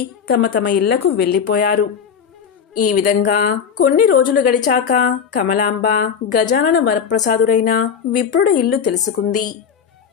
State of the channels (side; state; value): right; quieter; 7.2 dB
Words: తమ తమ ఇళ్లకు వెళ్లిపోయారు. ఈ విధంగా కొన్ని రోజులు గడిచాక కమలాంబ గజానన వరప్రసాదుడైన విప్రుడి ఇల్లు తెలుసుకుంది.